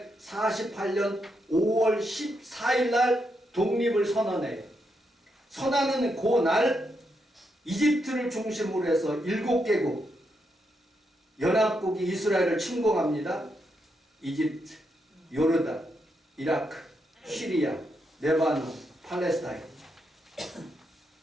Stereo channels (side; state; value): both; normal; correlation 0.81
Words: 5월 14일 날 독립을 선언해요. 선언하는 그날 이집트를 중심으로 해서 7개국 연합국이 이스라엘을 침공합니다. 이집트, 요르단, 이라크, 시리아, 레바논, 팔레스타인.